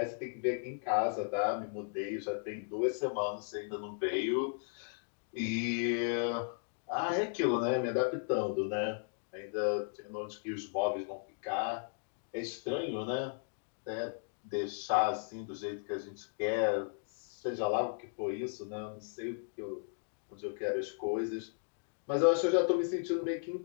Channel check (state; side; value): silent; right; digital silence